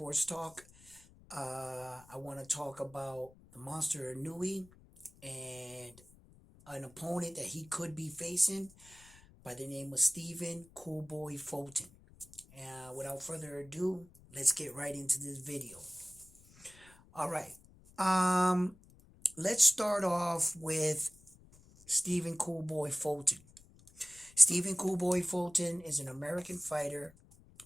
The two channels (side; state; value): left; noise; rumble, 24 dB below the sound